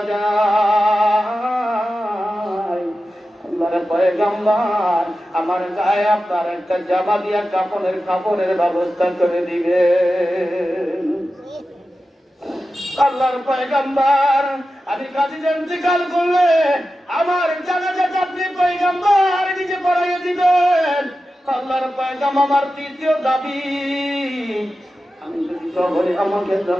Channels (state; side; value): normal; both; correlation 0.92